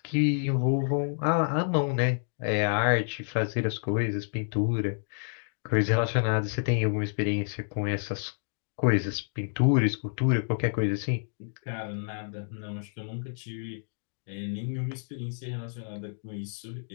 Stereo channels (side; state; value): right; silent; digital silence